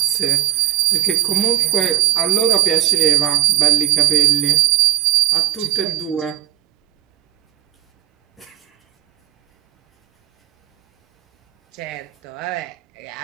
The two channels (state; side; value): quieter; left; 12.2 dB